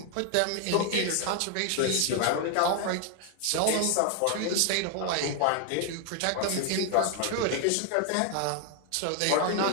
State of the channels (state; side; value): different; both; correlation 0.00